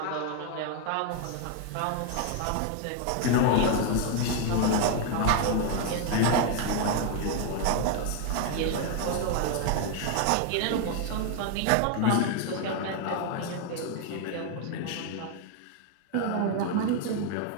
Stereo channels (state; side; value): different; both; correlation 0.01